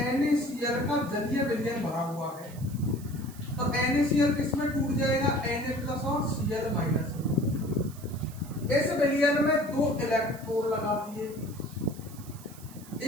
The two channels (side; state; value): right; noise; hiss, 19 dB below the sound